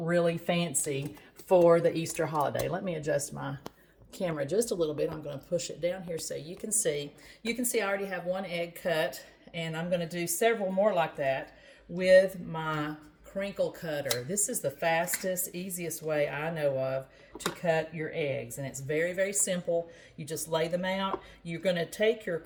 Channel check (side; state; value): both; identical; correlation 1.00